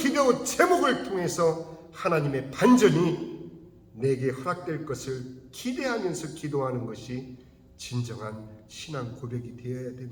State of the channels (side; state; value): both; identical; correlation 1.00